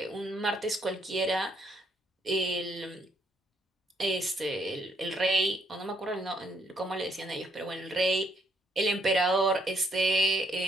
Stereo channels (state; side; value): normal; both; correlation 0.71